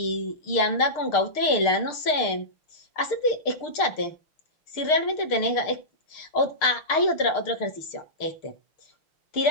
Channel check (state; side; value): late; right; 6.6 ms